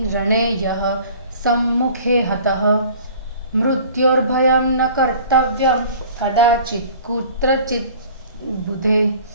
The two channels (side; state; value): both; inverted; correlation -0.47